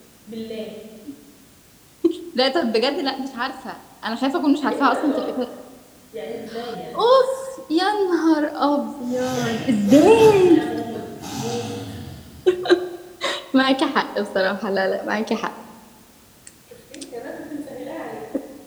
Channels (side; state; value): both; identical; correlation 1.00